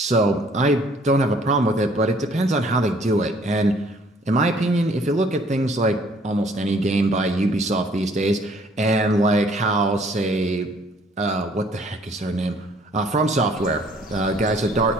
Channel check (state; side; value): normal; both; correlation 0.59